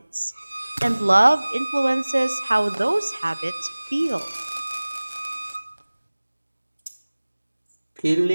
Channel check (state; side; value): inverted; both; correlation -1.00